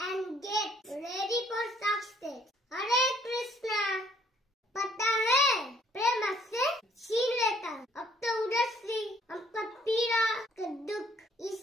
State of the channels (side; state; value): both; normal; correlation 0.63